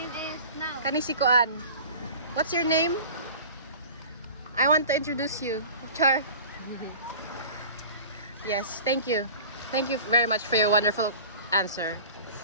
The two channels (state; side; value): inverted; both; correlation -0.40